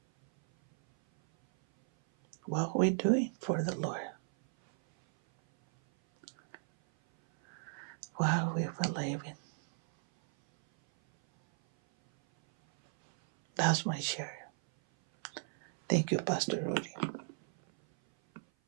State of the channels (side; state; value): left; silent; 55 dB below the other